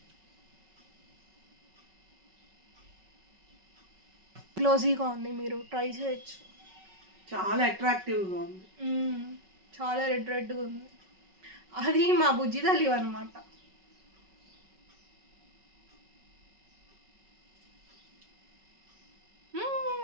గ్లోజీగా ఉంది, మీరు ట్రై చేయొచ్చు. చాలా అట్రాక్టివ్గా ఉంది, చాలా రెడ్గా ఉంది. అది మా బుజ్జి తల్లి అనమాట.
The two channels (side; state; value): left; late; 5.3 ms